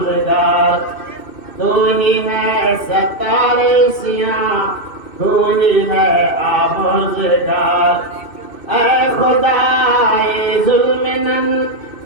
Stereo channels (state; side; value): late; right; 2.6 ms